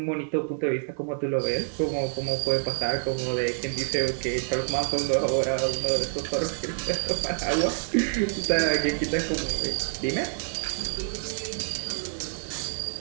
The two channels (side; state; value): left; silent; digital silence